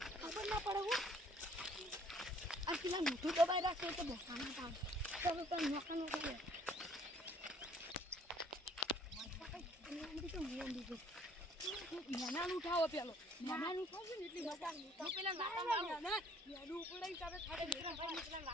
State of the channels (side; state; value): both; normal; correlation 0.59